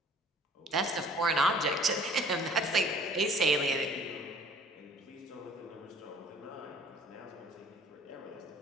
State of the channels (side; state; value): both; normal; correlation 0.53